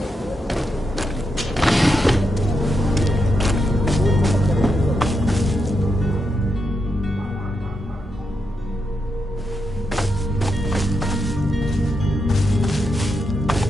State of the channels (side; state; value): both; normal; correlation 0.84